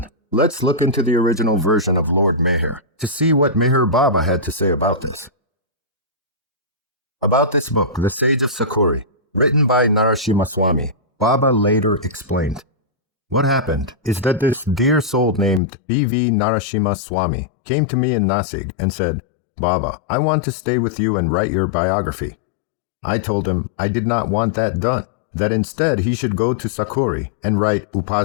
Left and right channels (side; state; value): right; drops out; at 15.6 s